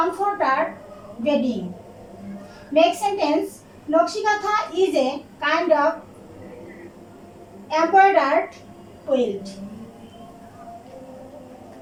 bedding. Make sentence. Nokshikatha is a kind of embroidered quilt.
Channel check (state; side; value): identical; both; correlation 1.00